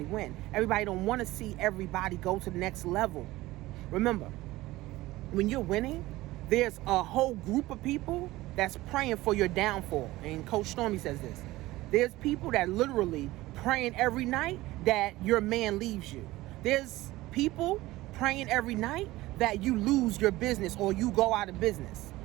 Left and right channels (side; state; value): left; quieter; 18.1 dB